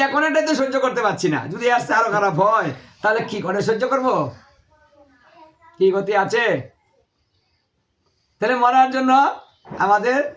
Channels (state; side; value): identical; both; correlation 1.00